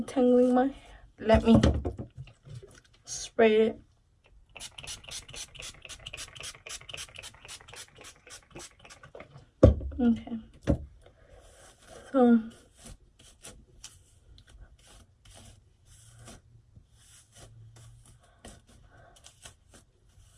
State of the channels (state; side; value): identical; both; correlation 1.00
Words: my hair. Let me spray it. Okay. So